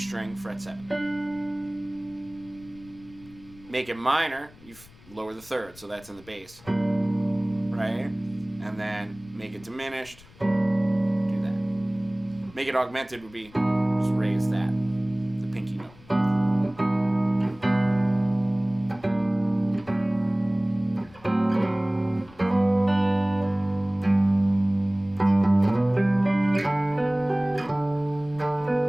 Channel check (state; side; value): noise; left; rumble, 24 dB below the sound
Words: fret 7. Make it minor, you lower the 3rd, so that's in the bass. Right? And then make it diminished, do that. Make it augmented would be just raise that, the pinky note.